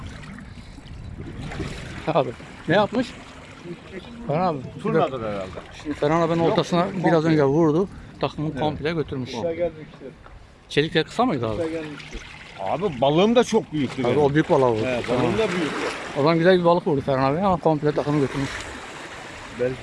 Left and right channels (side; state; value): both; identical; correlation 1.00